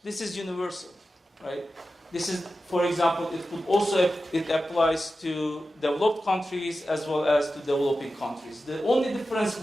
this is universal, right? This is, for example, it applies to developed countries as well as to developing countries. The only difference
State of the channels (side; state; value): both; normal; correlation 0.92